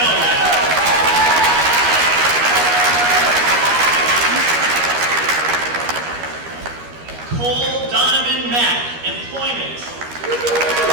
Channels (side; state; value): left; late; 13 ms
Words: Cole Donovan Mack, Employment.